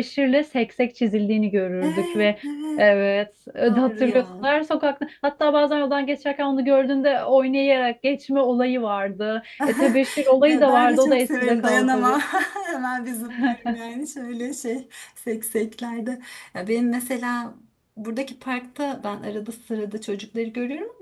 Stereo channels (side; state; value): both; identical; correlation 1.00